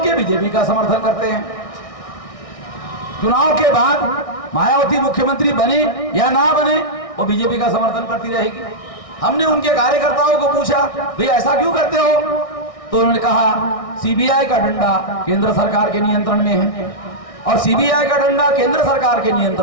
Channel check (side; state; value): right; late; 1.6 ms